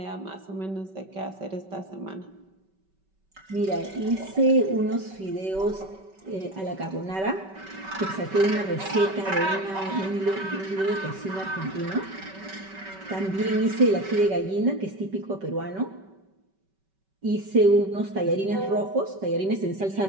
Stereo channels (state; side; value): late; left; 5.2 ms